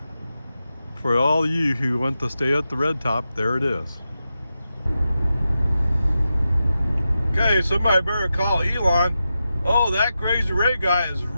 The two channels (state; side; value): inverted; both; correlation -0.90